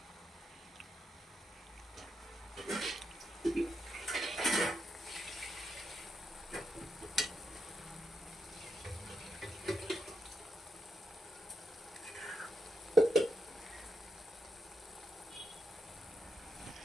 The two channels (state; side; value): normal; both; correlation 0.83